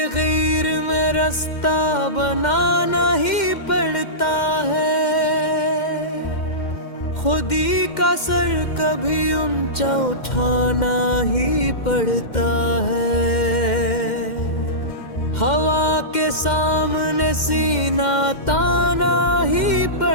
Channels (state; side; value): late; right; 2.1 ms